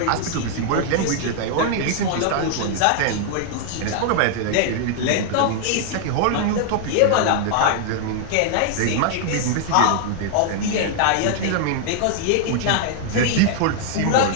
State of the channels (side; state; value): both; different; correlation 0.00